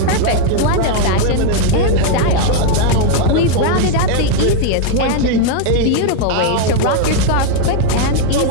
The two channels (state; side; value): different; both; correlation 0.00